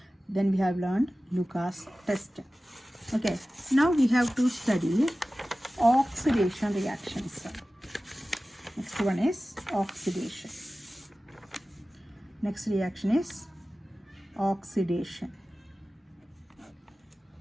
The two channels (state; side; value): normal; both; correlation 0.96